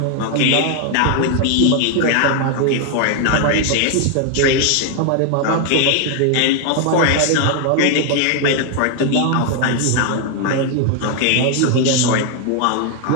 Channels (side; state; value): both; different; correlation 0.00